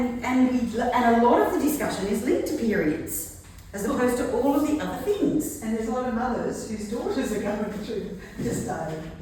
a lot of the discussion is linked to periods, as opposed to all of the other things. And there's a lot of mothers whose daughters are going through this day.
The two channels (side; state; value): both; identical; correlation 1.00